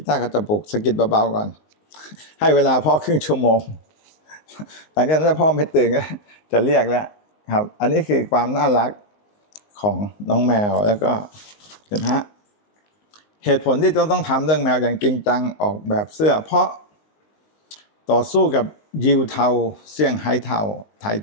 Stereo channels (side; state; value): right; late; 19 ms